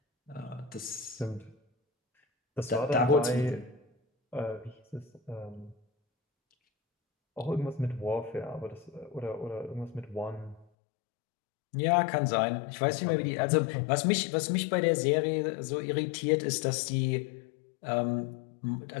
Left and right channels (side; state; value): right; drops out; at 10.7 s